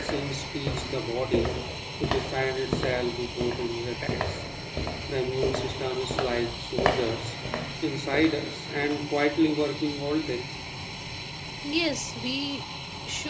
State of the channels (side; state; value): both; identical; correlation 1.00